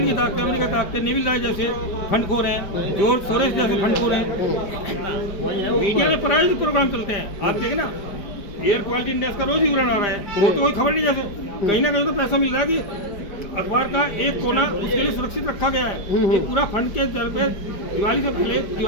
की ताकतें, अमेरिका की ताकतें, नेविल राय जैसे फंडखोर हैं, जॉर्ज सोरेस जैसे फंडखोर हैं। मीडिया में प्रायोजित प्रोग्राम चलते हैं, आप देखें ना, एयर क्वालिटी इंडेक्स का रोज ही विवरण आ रहा है, वो तो कोई खबर नहीं। जैसे कहीं ना कहीं तो पैसा मिल रहा है कि अखबार का एक कोना उसके लिए सुरक्षित रखा गया है। ये पूरा फंड के तौर पे दिवाली से पहले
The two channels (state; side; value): late; right; 5.0 ms